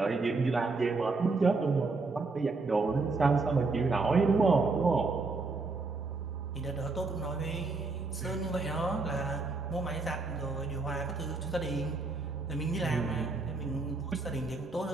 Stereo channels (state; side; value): quieter; left; 3.8 dB